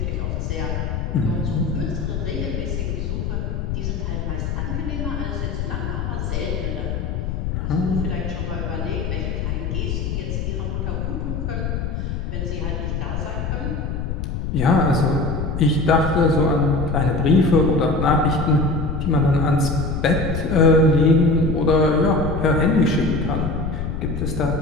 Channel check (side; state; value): left; noise; rumble, 3 dB below the sound